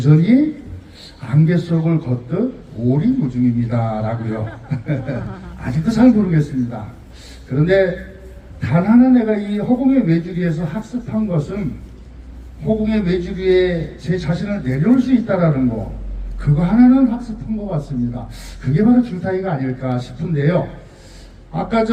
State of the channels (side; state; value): both; identical; correlation 1.00